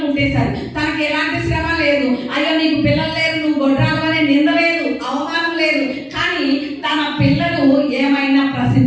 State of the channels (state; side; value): identical; both; correlation 1.00